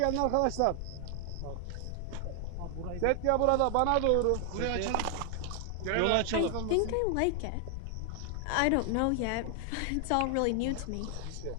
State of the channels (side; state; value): both; different; correlation 0.00